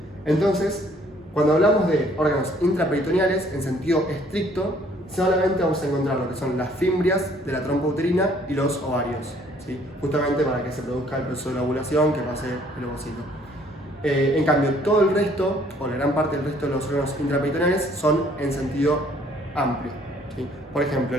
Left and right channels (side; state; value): both; normal; correlation 0.61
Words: Entonces, cuando hablamos de órganos intraperitoneales, en sentido estricto, solamente vamos a encontrar lo que son las fimbrias de la trompa uterina y los ovarios, ¿sí? Justamente para que se produzca el proceso de la ovulación, que pase el ovocito. En cambio, todo el resto, o la gran parte del resto de los órganos intraperitoneales, son en sentido amplio, ¿sí? Por ejemplo,